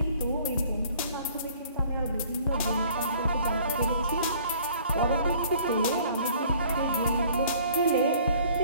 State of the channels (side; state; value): both; inverted; correlation -0.54